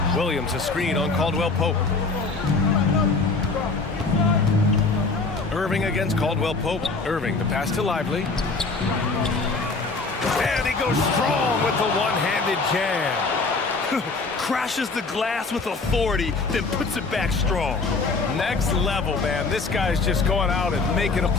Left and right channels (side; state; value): right; quieter; 3.9 dB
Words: Williams a screen on Caldwell Pope. Irving against Caldwell Pope. Irving, the pass to Lively. And he goes strong with the one-handed jam. Crashes the glass with authority, then puts it back strong. Next level, man. This guy's just going out and making a